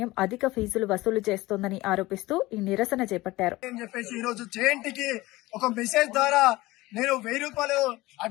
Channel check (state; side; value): quieter; right; 19.4 dB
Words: అధిక ఫీజులు వసూలు చేస్తోందని ఆరోపిస్తూ ఈ నిరసన చేపట్టారు. నేను 1000 రూపాయలు